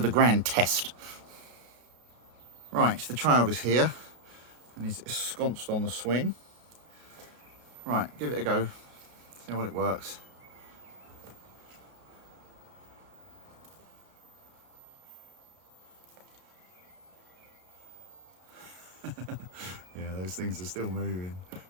the grand test. Right, the child is here, and he's ensconced on the swing. Right, give it a go, see how well it works. Yeah, those things are still moving.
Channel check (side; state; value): left; late; 33 ms